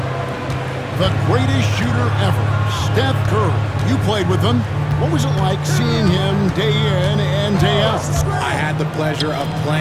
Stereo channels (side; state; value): both; identical; correlation 1.00